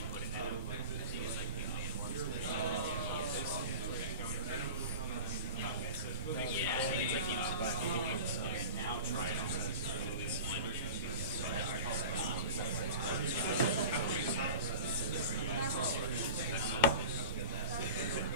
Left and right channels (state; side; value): inverted; both; correlation -0.35